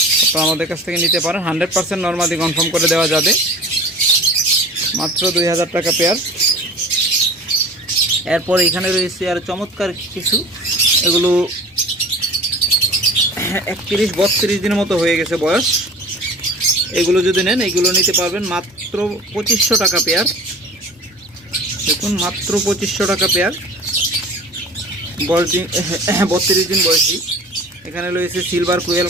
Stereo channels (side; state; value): both; normal; correlation 0.40